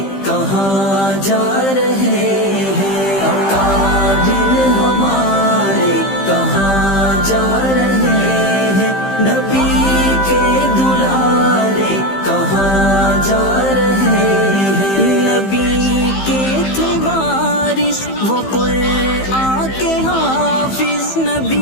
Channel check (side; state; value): right; late; 15 ms